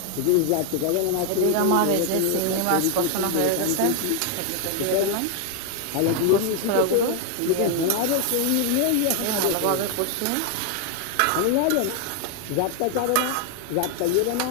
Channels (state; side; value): different; both; correlation 0.00